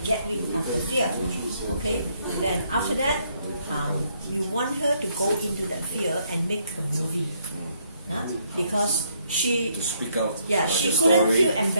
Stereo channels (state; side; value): inverted; both; correlation -0.70